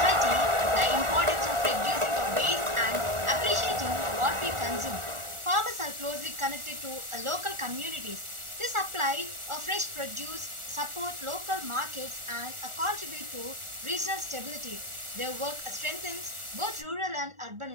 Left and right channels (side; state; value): left; late; 1.4 ms